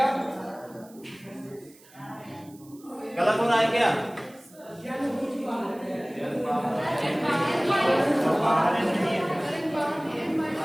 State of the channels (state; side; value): noise; right; hiss, 25 dB below the sound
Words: गलत हो रहा है क्या?